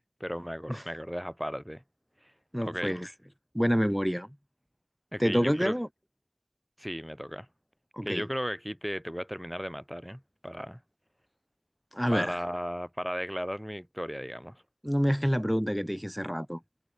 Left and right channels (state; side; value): identical; both; correlation 1.00